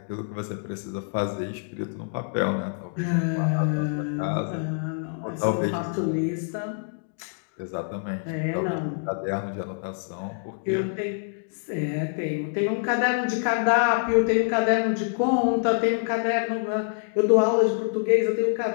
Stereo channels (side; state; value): right; silent; digital silence